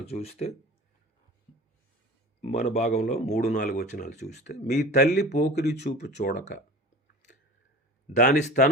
చూస్తే, మన భాగంలో 3-4 వచనాలు చూస్తే, మీ తల్లి పోకిరి చూపు చూడక దాని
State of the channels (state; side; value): normal; both; correlation 0.38